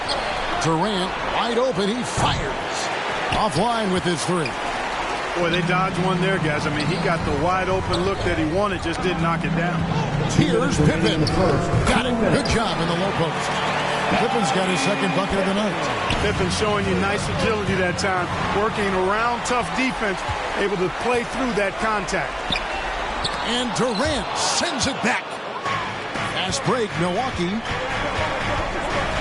Durant, wide open. He fires. Offline with his three. Boy, they dodged one there, guys. I mean, he got the wide open look that he wanted, just didn't knock it down. Here's Pippen. Got it. Good job in the low post. Pippen's got his second bucket of the night. Pippen showing you nice agility that time, working around tough defense, able to play through that contact. And Durant sends it back. Fast break, Milwaukee.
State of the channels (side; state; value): both; identical; correlation 1.00